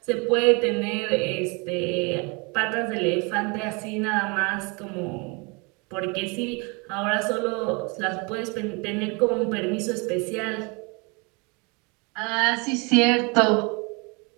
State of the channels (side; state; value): left; quieter; 30.4 dB